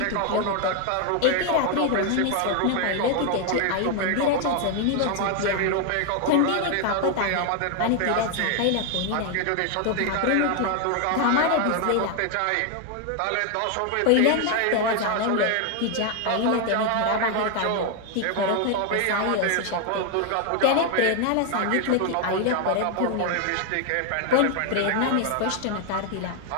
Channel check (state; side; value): different; both; correlation 0.01